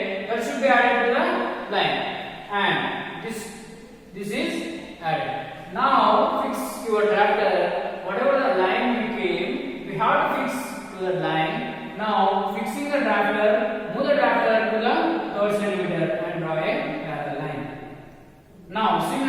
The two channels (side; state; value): both; identical; correlation 1.00